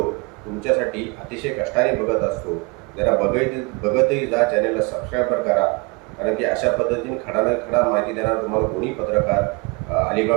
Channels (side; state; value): left; quieter; 28.8 dB